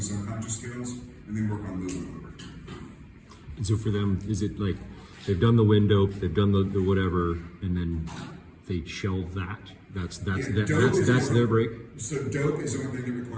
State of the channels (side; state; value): both; identical; correlation 1.00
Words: subconscious skills, and then work on moving over. And so for them, is it like they've done the window, they've done the whatever, and then they shelve that, That's their break. So dope is the one thing that